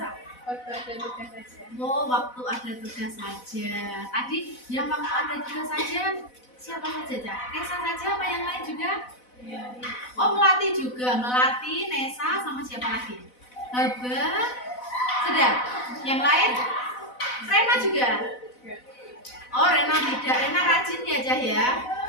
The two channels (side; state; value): right; late; 4.0 ms